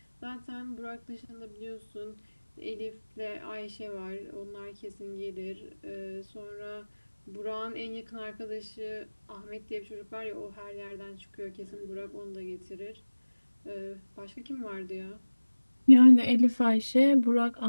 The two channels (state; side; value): inverted; both; correlation -1.00